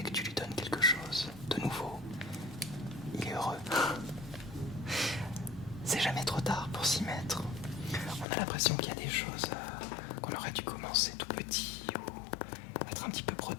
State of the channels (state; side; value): drops out; right; at 8.2 s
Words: que tu lui donnes quelque chose de nouveau, il est heureux. C'est jamais trop tard pour s'y mettre. On a l'impression qu'il y a des choses qu'on aurait dû commencer tout petit ou être un petit peu